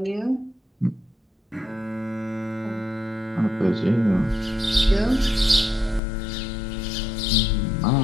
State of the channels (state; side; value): drops out; right; at 6.0 s